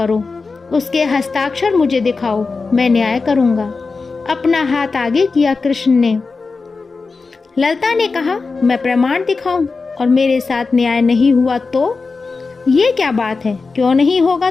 उसके हस्ताक्षर मुझे दिखाओ, मैं न्याय करूंगा। अपना हाथ आगे किया कृष्ण ने। ललता ने कहा, मैं प्रमाण दिखाऊं और मेरे साथ न्याय नहीं हुआ तो? ये क्या बात है? क्यों नहीं होगा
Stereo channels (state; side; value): quieter; right; 4.2 dB